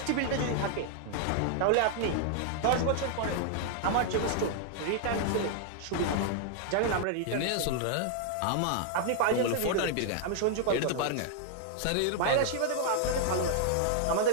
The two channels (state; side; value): different; both; correlation 0.00